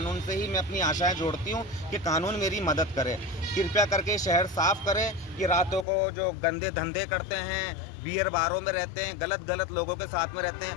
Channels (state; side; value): drops out; right; at 5.9 s